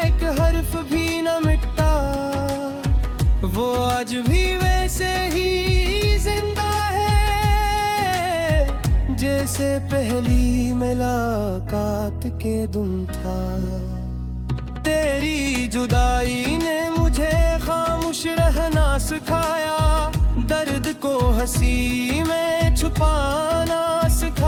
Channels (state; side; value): identical; both; correlation 1.00